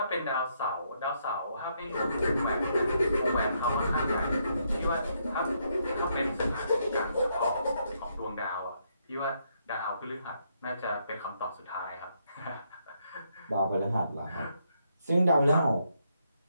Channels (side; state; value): both; inverted; correlation -0.76